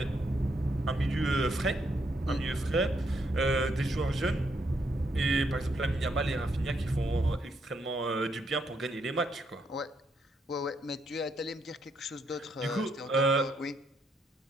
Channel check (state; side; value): normal; both; correlation 0.76